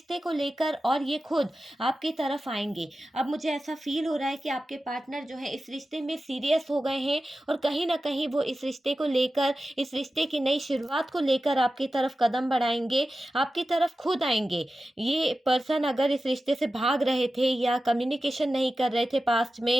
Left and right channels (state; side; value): normal; both; correlation 0.94